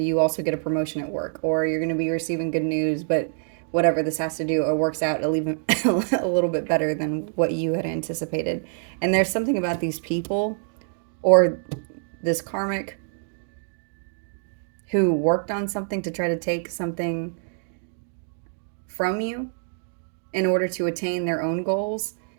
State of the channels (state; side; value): silent; left; digital silence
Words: you also get a promotion at work, or you're going to be receiving good news, but whatever this has to do, it works out a little bit better than what you had anticipated. And there's something about these people or this karmic who worked on something to try to take something from you in order to attain their own goals,